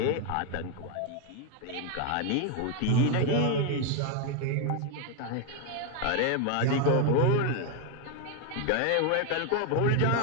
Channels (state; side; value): different; both; correlation 0.01